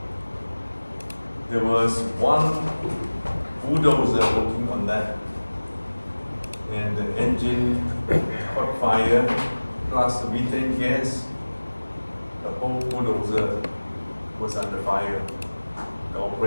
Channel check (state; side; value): inverted; both; correlation -1.00